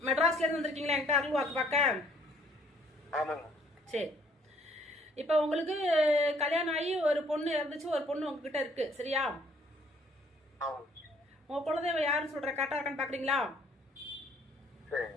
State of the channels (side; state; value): both; normal; correlation 0.62